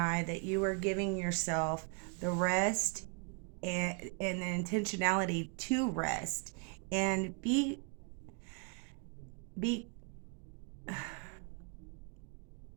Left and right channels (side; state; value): left; quieter; 33.7 dB